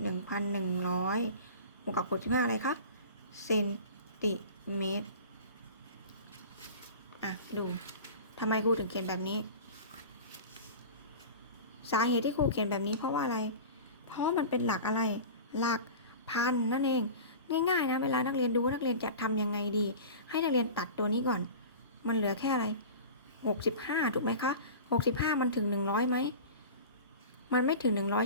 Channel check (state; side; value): inverted; both; correlation -0.36